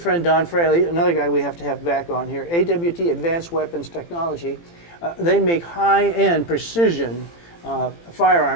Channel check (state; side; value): late; right; 18 ms